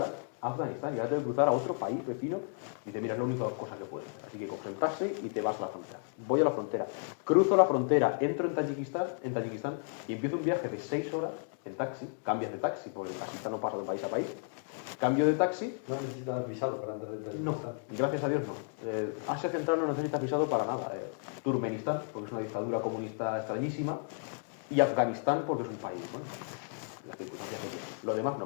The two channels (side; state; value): right; silent; 56 dB below the other